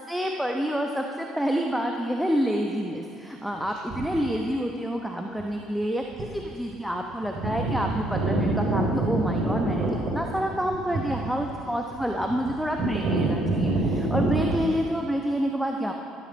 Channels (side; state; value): both; normal; correlation 0.75